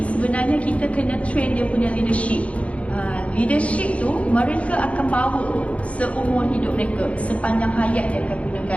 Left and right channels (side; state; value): right; late; 0.064 ms